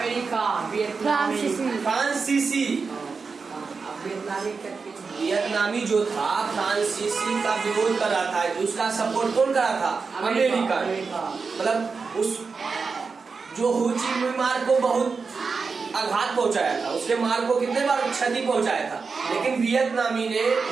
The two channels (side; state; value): left; quieter; 4.8 dB